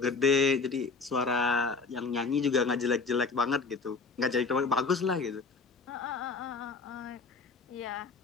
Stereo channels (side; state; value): right; quieter; 4.4 dB